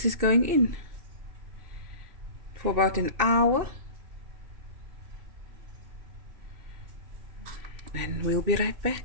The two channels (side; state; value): left; late; 2.6 ms